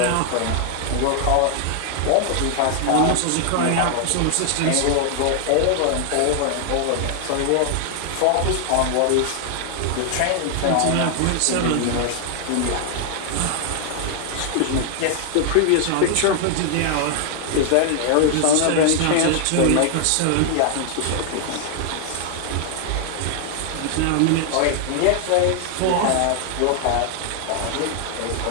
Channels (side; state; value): both; different; correlation 0.00